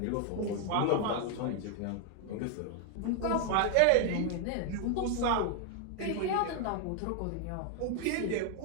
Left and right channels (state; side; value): different; both; correlation 0.00